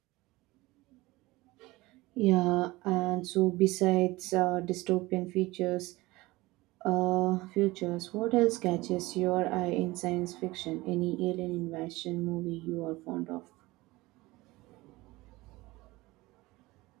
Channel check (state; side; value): quieter; left; 20.4 dB